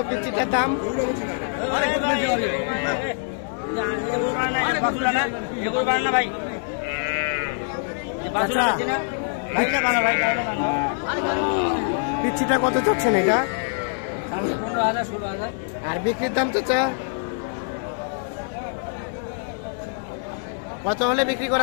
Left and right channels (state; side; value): silent; right; 62 dB below the other